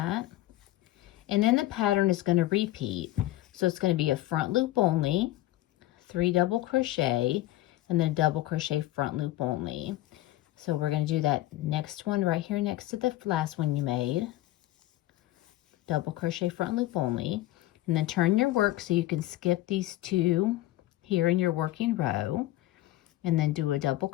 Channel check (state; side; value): quieter; right; 16.3 dB